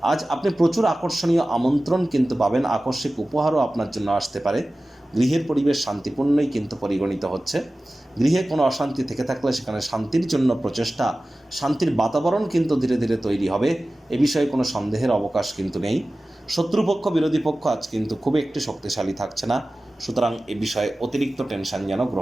আজ আপনি প্রচুর আকর্ষণীয় আমন্ত্রণ কিন্তু পাবেন। আকস্মিক উপহারও আপনার জন্য আসতে পারে। গৃহের পরিবেশ শান্তিপূর্ণই কিন্তু পরিগণিত হচ্ছে। গৃহে কোনো অশান্তি থেকে থাকলে সেখানে শান্তির জন্য প্রচেষ্টা, শান্তির বাতাবরণ কিন্তু ধীরে ধীরে তৈরি হবে। এ বিষয়ে কোনো সন্দেহের অবকাশ কিন্তু নেই। শত্রুপক্ষ, বিরোধী পক্ষ আজ কিন্তু খুব একটি শক্তিশালী থাকছে না। সুতরাং এ বিষয়ে অতিরিক্ত টেনশন যেন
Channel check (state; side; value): normal; both; correlation 0.96